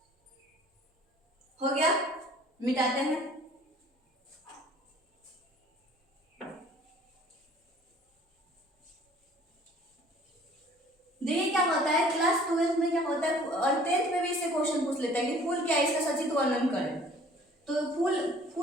हो गया, मिटाते हैं। देखिए क्या होता है क्लास 12 में क्या होता है और 10th में भी इससे क्वेश्चन पूछ लेता है कि फूल क्या है, इसका सचित्र वर्णन करें। तो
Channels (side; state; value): both; normal; correlation 0.53